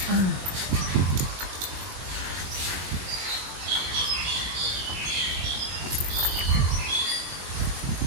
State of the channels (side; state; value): left; late; 21 ms